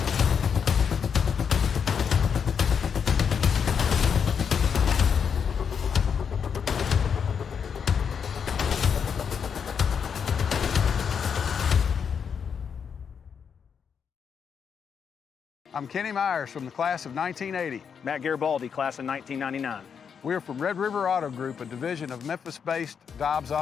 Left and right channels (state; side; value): quieter; right; 6.9 dB